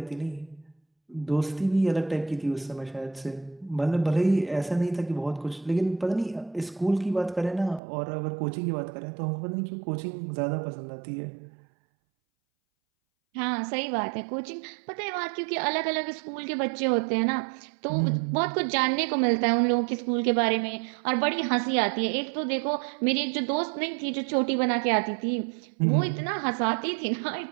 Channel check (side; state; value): left; drops out; at 7.8 s